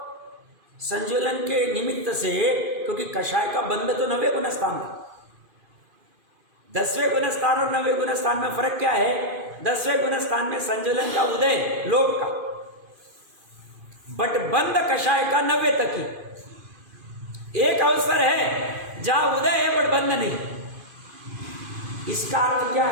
संज्वलन के निमित्त से, क्योंकि कषाय का बंध तो 9वें गुण स्थान था। 10वें गुण स्थान और 9वें गुण स्थान में फर्क क्या है? 10वें गुण स्थान में संज्वलन का उदय लोक का, बट बंद कषाय का 90 तक ही। एक अवसर है जहां उदय है बट बंद नहीं। इसका अर्थ क्या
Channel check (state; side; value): late; left; 2.5 ms